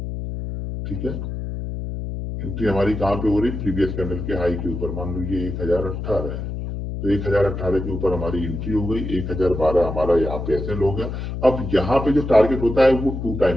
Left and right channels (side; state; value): left; noise; hum, 5 dB below the sound